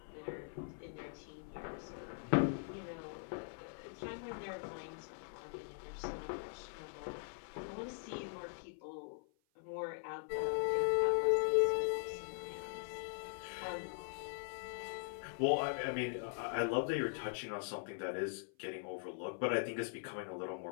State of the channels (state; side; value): silent; right; 50 dB below the other